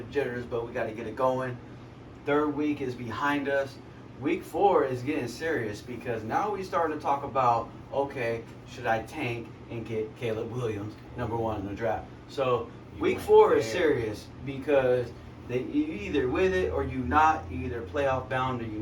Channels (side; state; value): both; identical; correlation 1.00